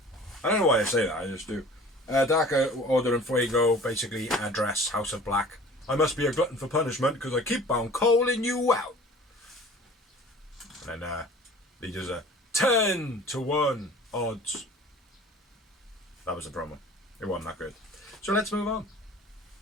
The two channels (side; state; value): both; normal; correlation 0.45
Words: I don't know why I say that, I just do. Dark Order and Fuego basically address House of Black. I must be a glutton for punishment because I keep on calling you out. And then he does a 10-1 odds. That was the promo. It wasn't that good. So let's move on.